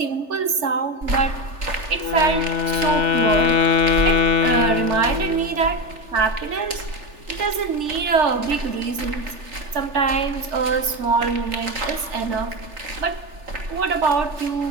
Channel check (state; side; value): late; left; 3.4 ms